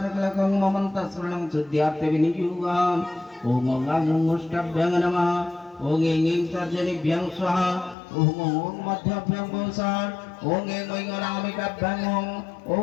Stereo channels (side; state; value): right; drops out; at 8.0 s